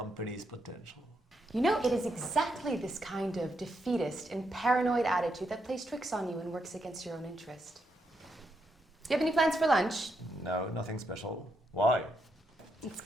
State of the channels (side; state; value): both; normal; correlation 0.80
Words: potential. You know, it is exactly this kind of defeatist and paranoid attitude that plays tricks on you and works against your own interest. Do you have any plans for lunch? No, nothing special. Why? Let's